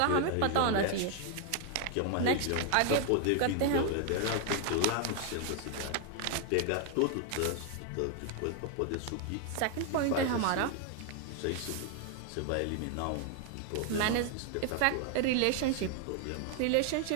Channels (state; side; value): different; both; correlation 0.00